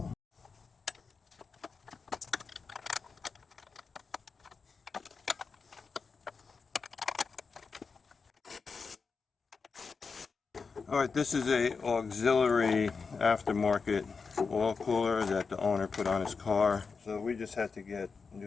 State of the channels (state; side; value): quieter; right; 5.0 dB